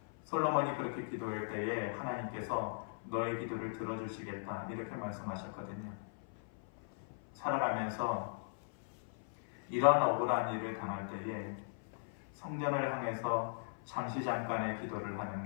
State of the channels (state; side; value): silent; right; 52 dB below the other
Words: 솔로몬이 그렇게 기도할 때에 하나님께서 너의 기도를 들어주시겠다, 이렇게 말씀하셨거든요. 살아가면서 이런 억울한 일을 당할 때에 성전을 향해서 잠시 잠깐의 기도를 하는